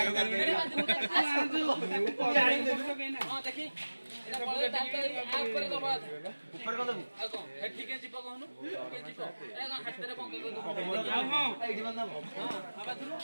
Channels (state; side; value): inverted; both; correlation -1.00